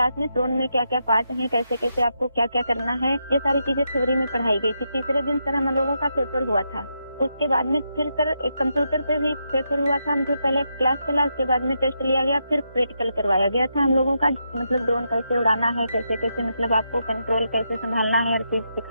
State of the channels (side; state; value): both; inverted; correlation -0.83